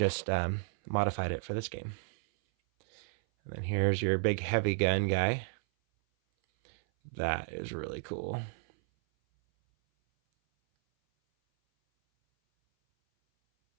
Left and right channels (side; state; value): left; silent; 56 dB below the other